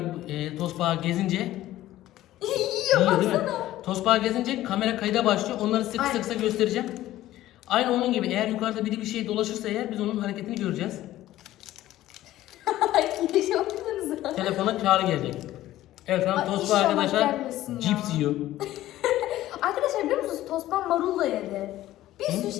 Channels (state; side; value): quieter; right; 14.7 dB